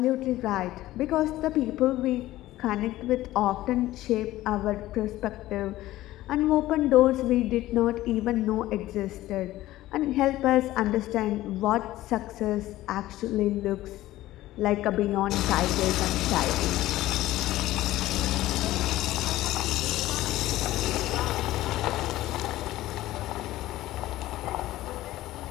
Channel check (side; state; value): right; quieter; 15.8 dB